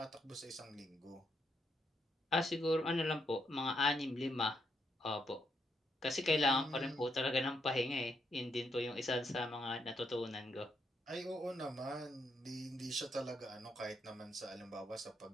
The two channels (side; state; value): both; normal; correlation 0.78